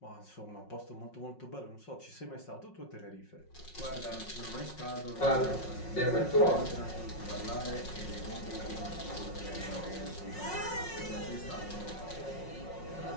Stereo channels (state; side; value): late; right; 5.5 ms